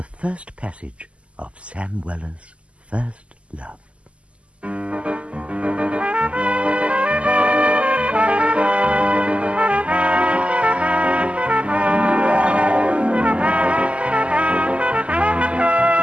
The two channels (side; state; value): left; late; 0.058 ms